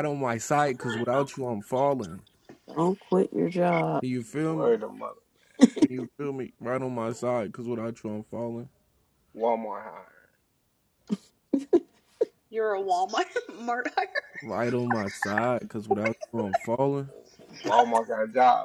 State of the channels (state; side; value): identical; both; correlation 1.00